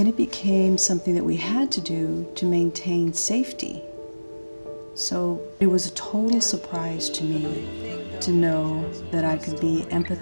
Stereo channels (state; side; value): inverted; both; correlation -1.00